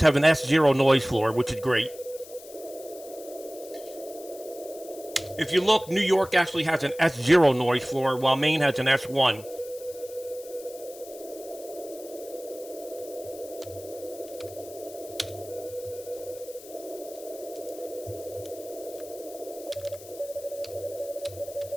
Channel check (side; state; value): left; noise; hiss, 18 dB below the sound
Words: have an S0 noise floor, which is great. If you look, New York actually has an S0 noise floor, while Maine has an S1.